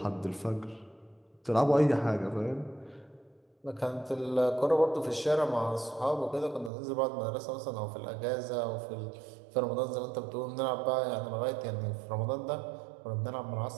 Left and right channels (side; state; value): left; drops out; at 6.7 s